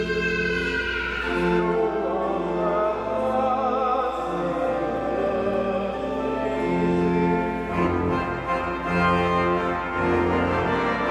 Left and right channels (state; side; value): identical; both; correlation 1.00